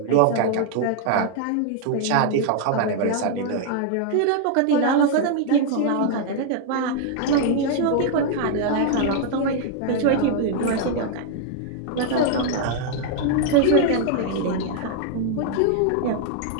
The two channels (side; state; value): both; different; correlation 0.00